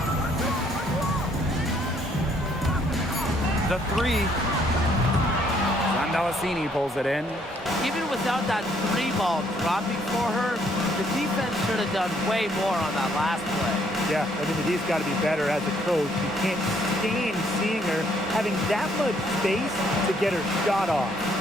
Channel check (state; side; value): normal; both; correlation 0.67